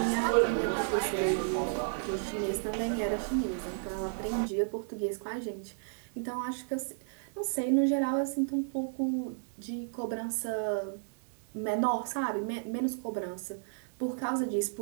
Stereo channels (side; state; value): left; silent; digital silence